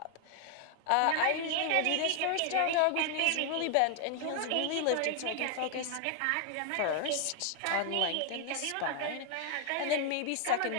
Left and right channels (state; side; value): different; both; correlation 0.00